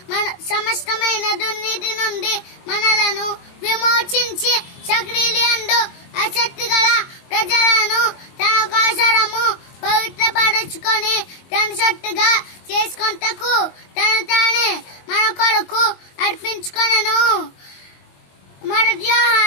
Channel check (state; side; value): late; right; 22 ms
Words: మన సమస్తమైన దుర్నీతి నుండి మనలను విమోచించి సక్రియలందు ఆసక్తి గల ప్రజలను తన కోసరము పవిత్రపరచుకొని తన సొత్తుగా చేసుకొనుటకు తను తానే మన కొరకు అర్పించుకొనెను. మొదటి